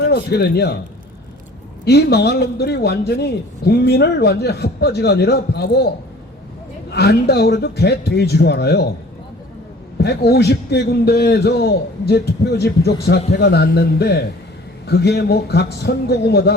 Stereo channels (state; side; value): normal; both; correlation 0.49